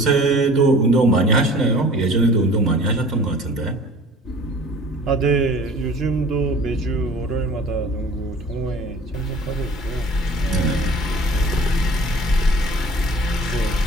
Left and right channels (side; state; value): both; normal; correlation 0.46